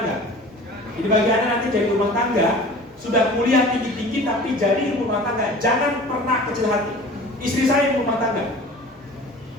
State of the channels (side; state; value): both; normal; correlation 0.42